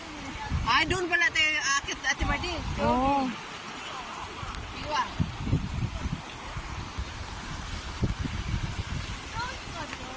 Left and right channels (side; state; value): both; identical; correlation 1.00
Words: Ay, doon pala tayo akit Ate Mardi. Oh. Iwa.